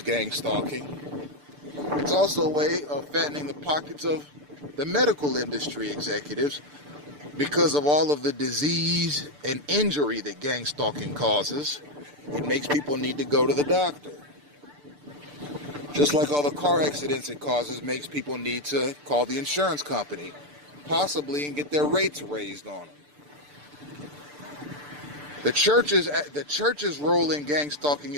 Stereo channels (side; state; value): left; late; 6.8 ms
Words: gang stalking. It's also a way of fattening the pockets of the medical industry executives because of all of the disease and injury that gang stalking causes. It makes people need to go to the doctor. Just like all the car accidents it causes makes people need to call the insurance company, possibly, and get their rates raised on them. The church's role in gang stalking